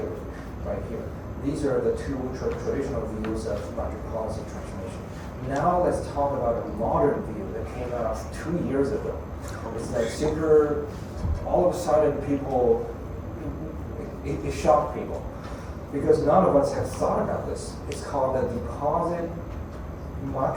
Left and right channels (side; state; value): both; identical; correlation 1.00